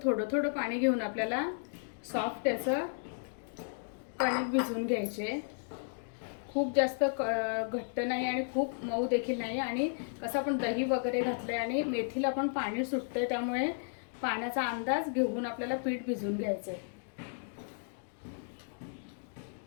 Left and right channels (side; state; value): right; silent; digital silence